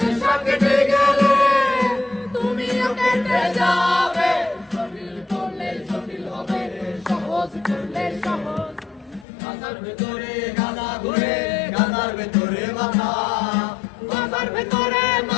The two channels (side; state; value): right; drops out; at 9.2 s